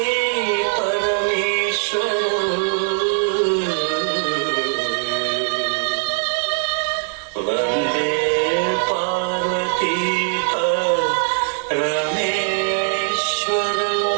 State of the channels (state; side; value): silent; left; digital silence